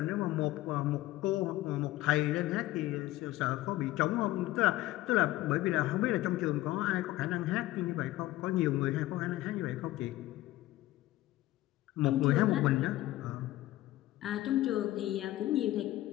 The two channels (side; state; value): right; quieter; 16.4 dB